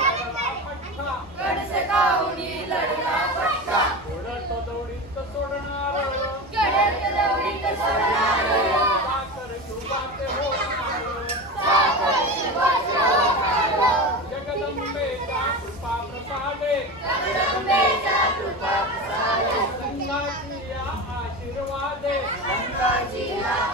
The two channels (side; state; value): both; normal; correlation 0.25